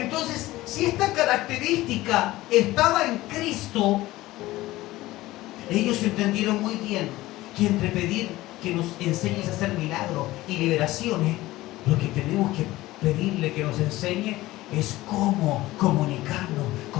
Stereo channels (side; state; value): right; quieter; 17.5 dB